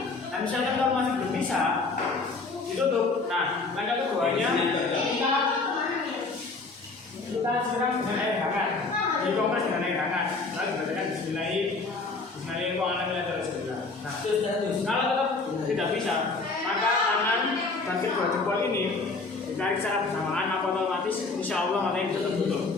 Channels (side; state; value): right; quieter; 3.8 dB